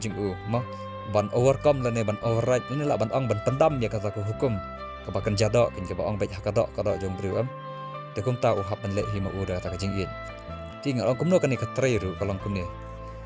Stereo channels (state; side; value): identical; both; correlation 1.00